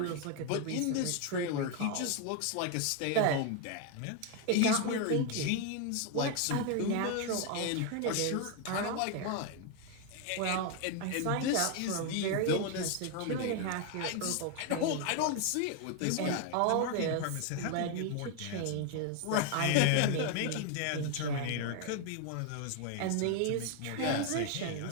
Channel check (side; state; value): both; different; correlation 0.01